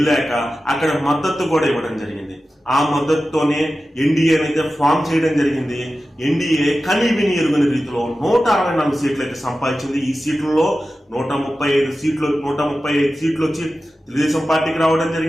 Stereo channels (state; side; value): normal; both; correlation 0.94